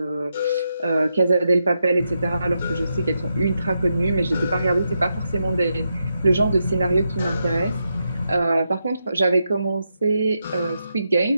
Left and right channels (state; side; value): inverted; both; correlation -0.84